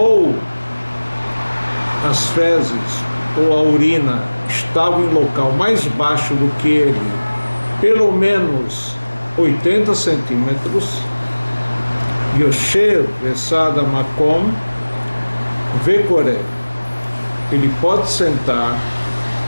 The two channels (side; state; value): both; inverted; correlation -1.00